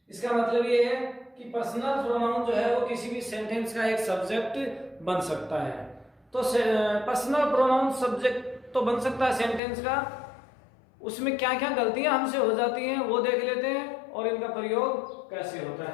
इसका मतलब ये है कि पर्सनल प्रोनाउन जो है वो किसी भी सेंटेंस का एक सब्जेक्ट बन सकता है। तो पर्सनल प्रोनाउन सब्जेक्ट तो बन सकता है सेंटेंस का, उसमें क्या क्या गलतियां हमसे हो जाती हैं वो देख लेते हैं और इनका प्रयोग कैसे होता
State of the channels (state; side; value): drops out; right; at 9.6 s